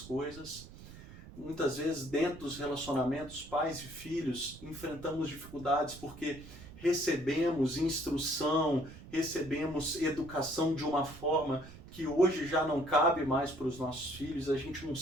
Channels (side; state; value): right; noise; rumble, 16 dB below the sound